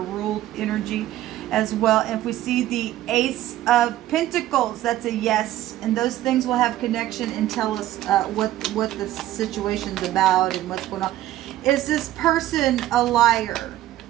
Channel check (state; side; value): quieter; left; 14.1 dB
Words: energy as well. And if we see the Ace of Pentacles, that's a yes. And those things will have connection and tell us what the situation's about and what's going on. Is this person a liar?